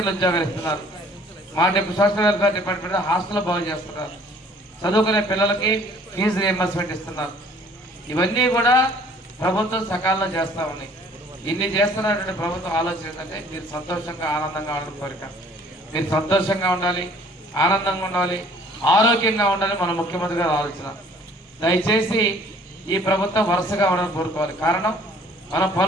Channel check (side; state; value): both; normal; correlation 0.56